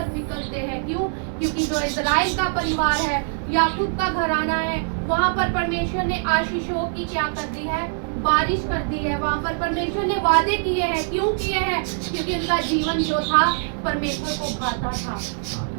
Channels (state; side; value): silent; left; digital silence